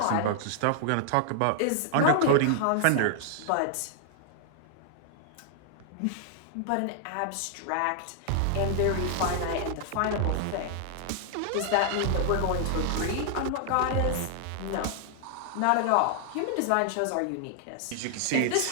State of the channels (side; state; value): both; different; correlation 0.00